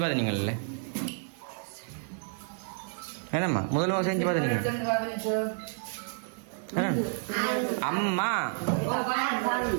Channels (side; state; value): left; silent; digital silence